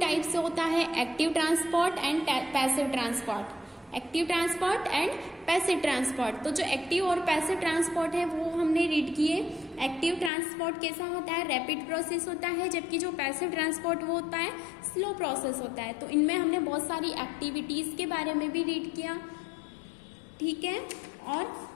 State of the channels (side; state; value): right; drops out; at 10.3 s